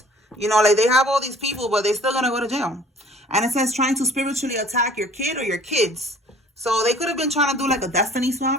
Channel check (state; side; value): normal; both; correlation 0.52